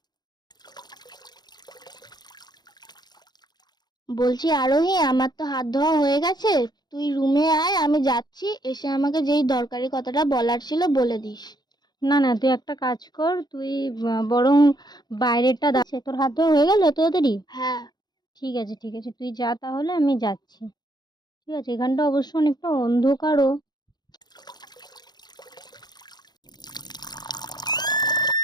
বলছি আরোহী, আমার তো হাত ধোয়া হয়ে গেছে, তুই রুমে আয়, আমি যাচ্ছি, এসে আমাকে যেই দরকারি কথাটা বলার ছিল বলে দিস। না না, তুই একটা কাজ কর, তুই বরং বাইরেটা দাঁড়াচ্ছে, তোর হাত ধোয়া হয়ে গেল এত তাড়াতাড়ি? হ্যাঁ। ঠিক আছে ঠিক আছে, তুই যা, তাহলে আমি যাচ্ছি। ঠিক আছে, এখানটা অবশ্য অনেকটা অন্ধকারও।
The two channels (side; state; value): right; late; 0.20 ms